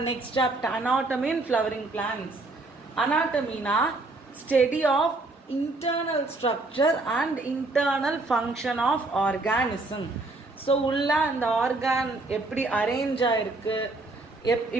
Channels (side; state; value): left; quieter; 3.2 dB